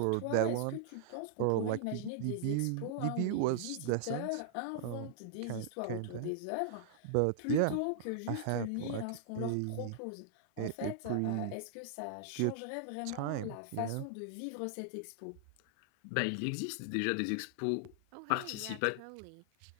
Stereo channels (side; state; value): both; different; correlation -0.01